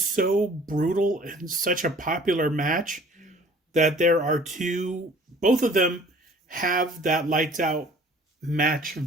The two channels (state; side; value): normal; both; correlation 0.51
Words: so brutal and such a popular match that there are both of them have that lights out match